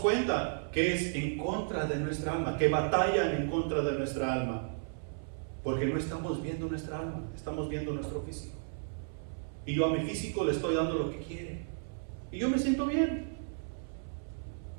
que es en contra de nuestra alma, que batallan en contra de nuestra alma, porque no estamos viendo nuestra alma, estamos viendo nuestro físico. Y yo a mi físico le estoy dando lo que quiere, y yo me siento bien.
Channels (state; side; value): silent; left; 55 dB below the other